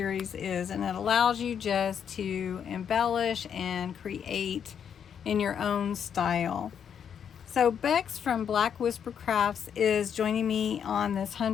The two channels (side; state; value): right; quieter; 8.0 dB